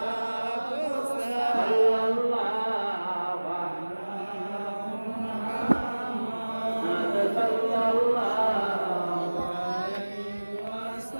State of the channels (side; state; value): both; inverted; correlation -1.00